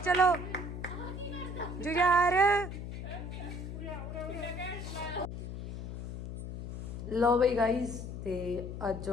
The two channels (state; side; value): noise; left; hum, 7 dB below the sound